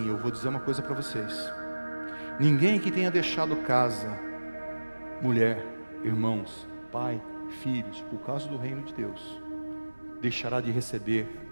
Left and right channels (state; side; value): inverted; both; correlation -1.00